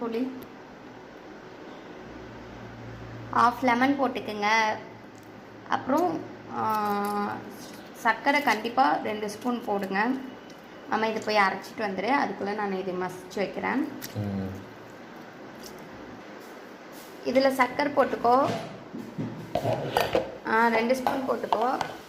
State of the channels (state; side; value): identical; both; correlation 1.00